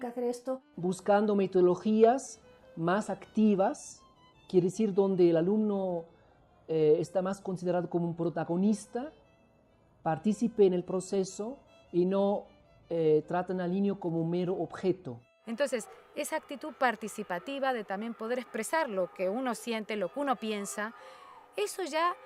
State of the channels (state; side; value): identical; both; correlation 1.00